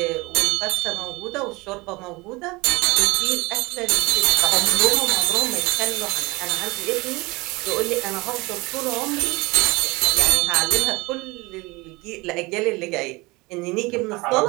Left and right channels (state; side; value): quieter; left; 23.7 dB